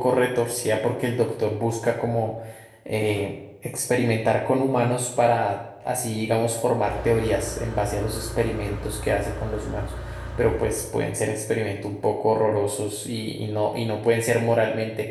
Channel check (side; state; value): both; identical; correlation 1.00